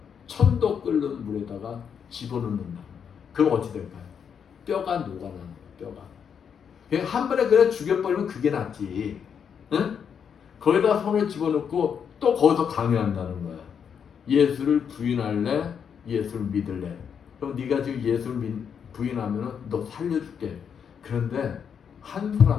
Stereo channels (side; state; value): right; quieter; 7.4 dB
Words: 1000도 끓는 물에다가 집어넣는다. 그럼 어찌 될까요? 뼈가 녹아나는 거예요. 뼈가. 그냥 한 번에 그냥 죽여버리면 그게 낫지. 응? 거기다 손을 집어넣고 또 거기서 강요한다는 거야. 예수를 부인할래? 예수를 믿을래? 그럼 네가 지금 예수를 부인하면 너 살려줄게. 그런데 한